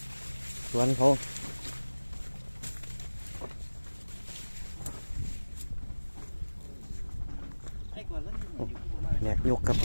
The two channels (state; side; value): inverted; both; correlation -1.00